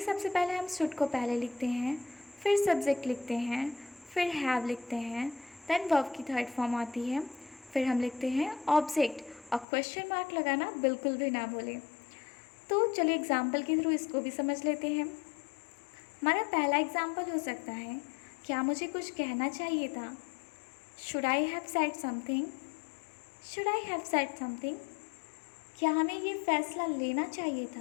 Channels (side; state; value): right; drops out; at 9.7 s